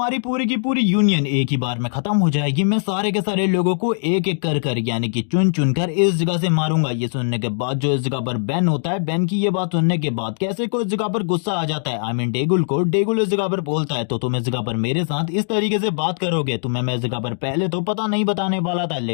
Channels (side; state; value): right; silent; digital silence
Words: पूरी की पूरी यूनियन एक ही बार में खत्म हो जाएगी। मैं सारे के सारे लोगों को एक एक कर यानी कि चुन चुन कर इस जगह से मारूंगा। ये सुनने के बाद जो इस जगह पर बेन होता है, बेन की ये बात सुनने के बाद कैसे को इस जगह पर गुस्सा आ जाता है। आई मीन डेगुल इस जगह पर बोलता है तो तुम इस जगह पर मेरे साथ इस तरीके से बात करोगे। तुम्हें मैं इस जगह पर पहले तो पता नहीं बताने वाला था,